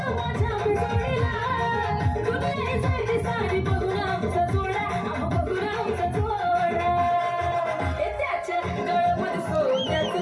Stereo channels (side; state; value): both; identical; correlation 1.00